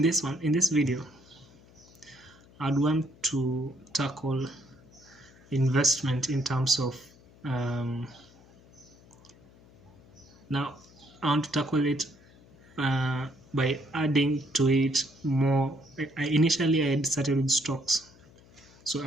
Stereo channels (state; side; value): noise; left; hum, 25 dB below the sound